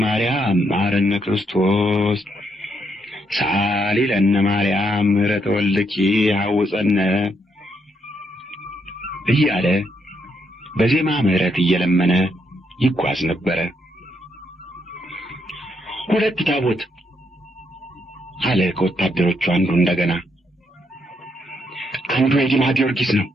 ማርያም መሐረነ ክርስቶስ ሳሊ ለነ ማርያም ምሕረተ ወልድኪ ሐውፀነ እያለ በዜማ ምሕረት እየለመነ ይጓዝ ነበረ። ሁለት ታቦት አለ ከወታደሮቹ አንዱ እንደገና። አንዱ የዲማ ጊዮርጊስ ነው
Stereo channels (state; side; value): normal; both; correlation 0.76